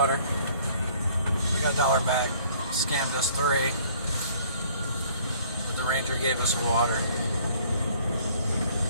We got $1 back. Scammed us 3, but the ranger gave us water.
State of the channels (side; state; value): both; inverted; correlation -0.57